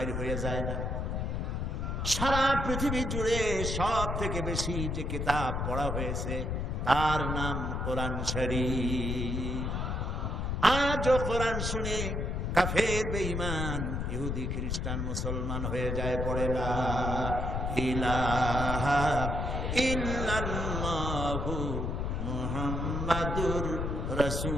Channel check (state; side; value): noise; left; rumble, 1 dB below the sound